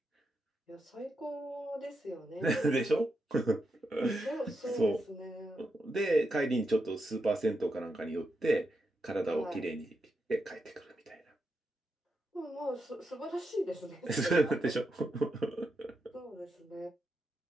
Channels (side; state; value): both; normal; correlation 0.85